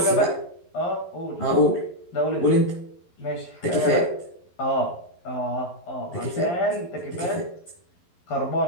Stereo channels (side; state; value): right; late; 11 ms